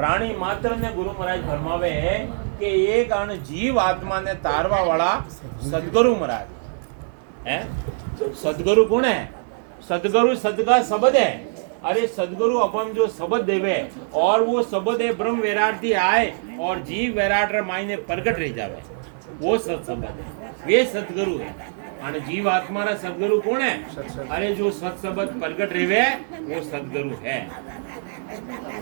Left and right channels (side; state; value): left; silent; digital silence